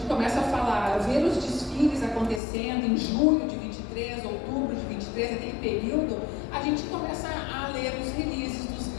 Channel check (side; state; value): right; drops out; at 2.4 s